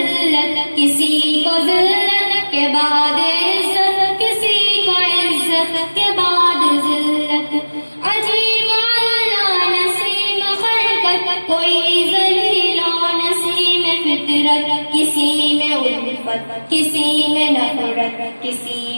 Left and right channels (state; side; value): inverted; both; correlation -1.00